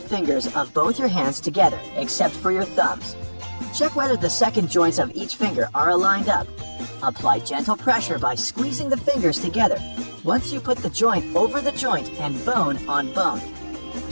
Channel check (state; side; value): inverted; both; correlation -1.00